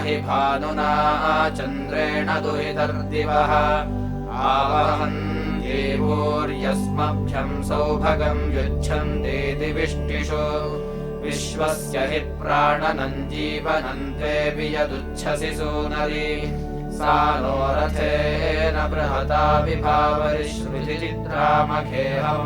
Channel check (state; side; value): identical; both; correlation 1.00